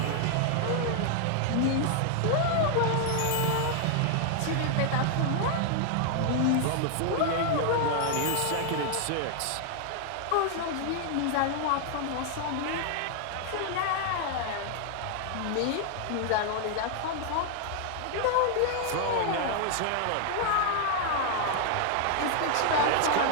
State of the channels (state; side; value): different; both; correlation 0.00